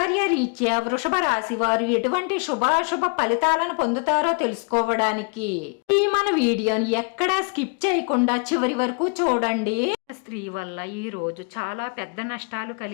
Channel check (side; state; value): right; quieter; 37.6 dB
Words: రీత్యా వృషభ రాశి వారు ఎటువంటి శుభాశుభ ఫలితాలను పొందుతారో తెలుసుకోవడానికి ఈ మన వీడియోని ఎక్కడా స్కిప్ చేయకుండా చివరి వరకు చూడండి. స్త్రీ వల్ల ఈ రోజు చాలా పెద్ద నష్టాలు